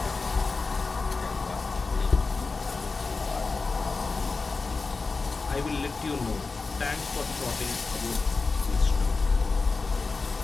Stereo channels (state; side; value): quieter; right; 4.1 dB